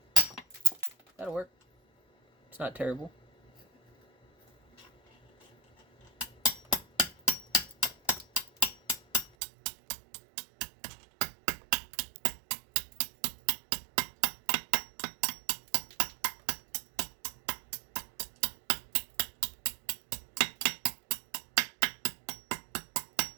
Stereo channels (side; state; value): left; drops out; at 9.3 s